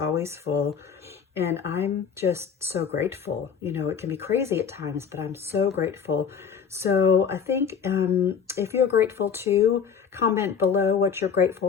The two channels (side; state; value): right; quieter; 6.9 dB